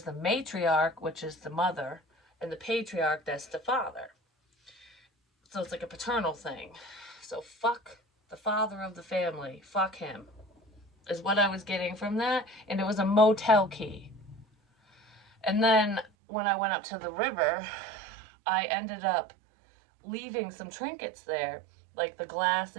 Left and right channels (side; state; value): left; drops out; at 16.1 s